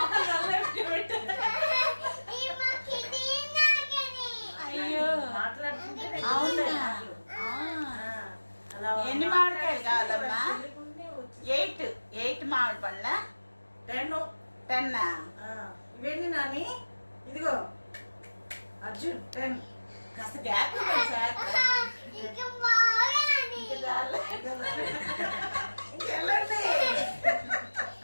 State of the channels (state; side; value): inverted; both; correlation -1.00